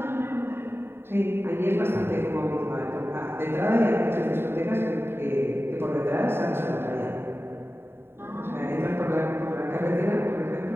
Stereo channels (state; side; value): late; left; 0.11 ms